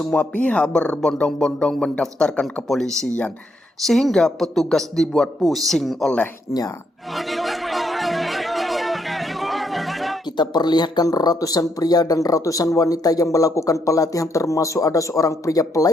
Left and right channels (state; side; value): normal; both; correlation 0.76